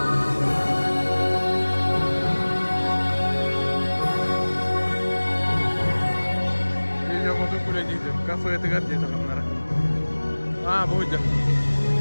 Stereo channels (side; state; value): both; inverted; correlation -1.00